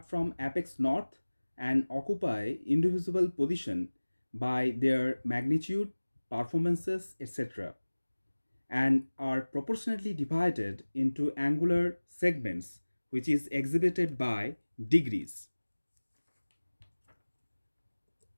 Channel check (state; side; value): inverted; both; correlation -1.00